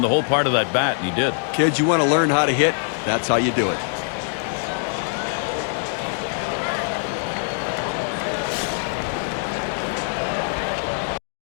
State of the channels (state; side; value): silent; right; digital silence